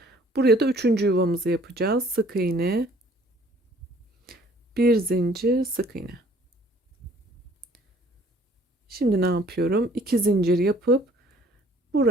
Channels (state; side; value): normal; both; correlation 0.57